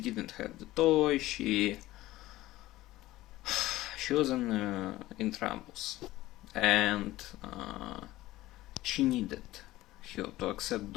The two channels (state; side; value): quieter; right; 16.8 dB